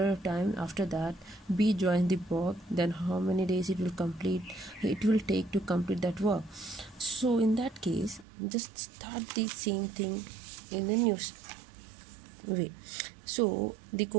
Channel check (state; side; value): drops out; left; at 8.2 s